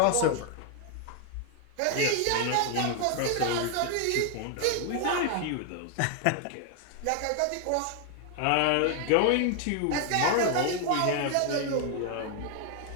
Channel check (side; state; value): both; different; correlation 0.00